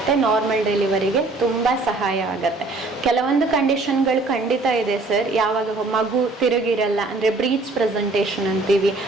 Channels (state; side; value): quieter; left; 3.3 dB